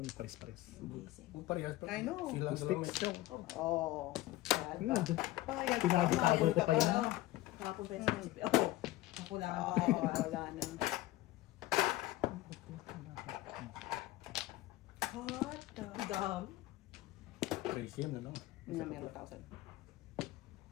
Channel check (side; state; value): right; quieter; 16.7 dB